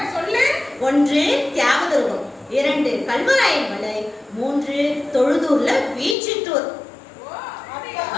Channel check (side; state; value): right; drops out; at 6.2 s